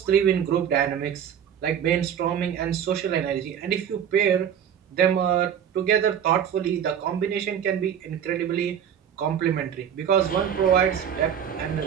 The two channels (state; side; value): quieter; left; 8.7 dB